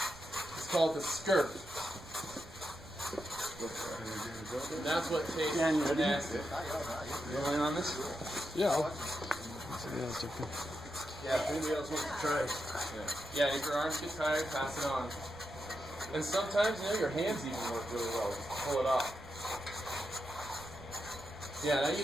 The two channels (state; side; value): noise; right; rumble, 18 dB below the sound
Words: It's called the skirt. And that's what tastes nasty. You rolling on this? Yeah. Yeah, if anybody else wants to try. Yeah, if your arms get tired, pass it on. And sometimes, you know, your hands even work really well. Pull it off. Yeah, and I